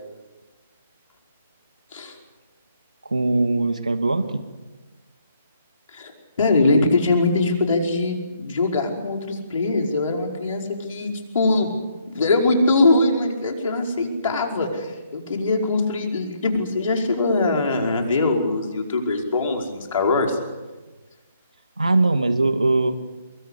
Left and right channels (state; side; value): inverted; both; correlation -0.72